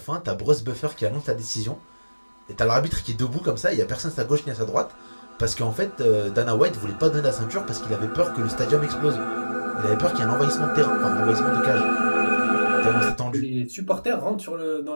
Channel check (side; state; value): both; inverted; correlation -1.00